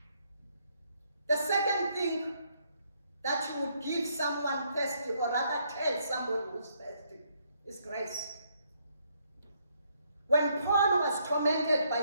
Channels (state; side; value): inverted; both; correlation -0.72